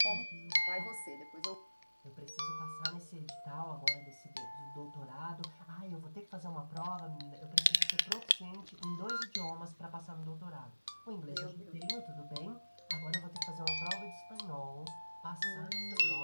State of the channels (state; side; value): inverted; both; correlation -1.00